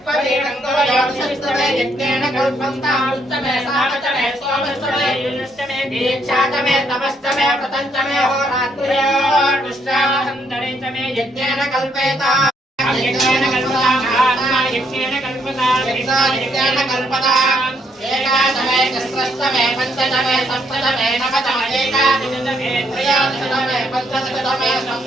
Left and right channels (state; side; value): normal; both; correlation 0.72